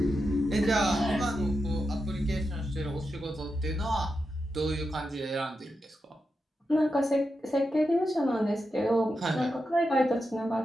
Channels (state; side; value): normal; both; correlation 0.88